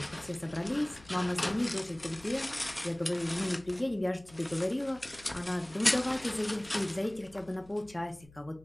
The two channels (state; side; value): noise; left; hum, 23 dB below the sound